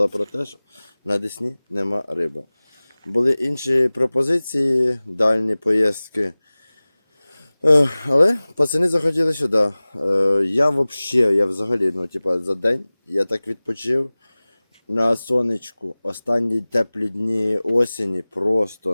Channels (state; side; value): inverted; both; correlation -0.99